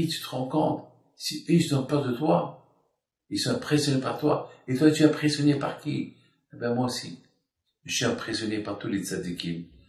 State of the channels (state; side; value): identical; both; correlation 1.00